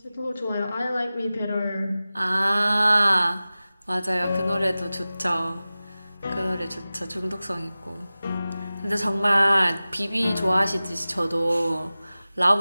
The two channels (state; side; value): inverted; both; correlation -0.97